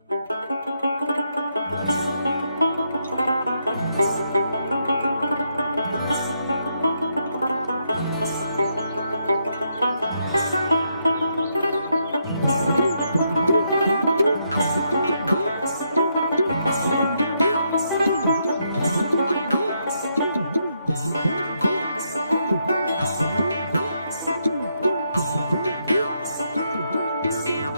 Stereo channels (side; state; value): both; inverted; correlation -0.78